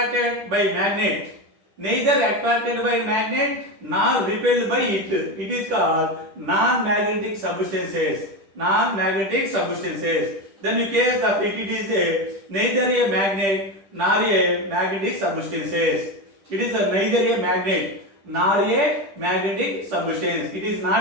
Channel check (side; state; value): left; late; 10 ms